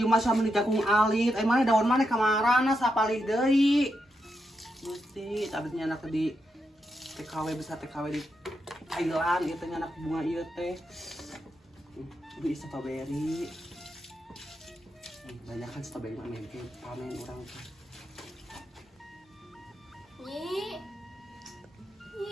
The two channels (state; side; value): normal; both; correlation 0.84